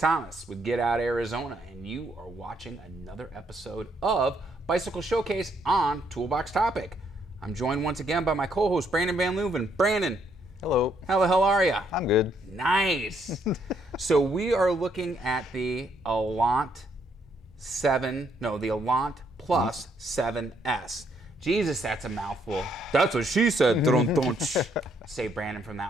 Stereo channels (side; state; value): both; normal; correlation 0.72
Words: with Get Out Arizona, and you are watching another episode of Bicycle Showcase on Toolbox Topic. I'm joined once again by my co-host Brandon Van Leuven. Brandon. Hello. How the hell are you? I'm good. Nice. So we are looking at the Allant Plus 7S. Jesus, that's a mouthful. That's what she said. Save Brandon from